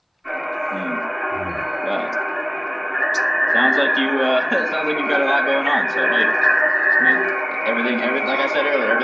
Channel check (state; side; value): identical; both; correlation 1.00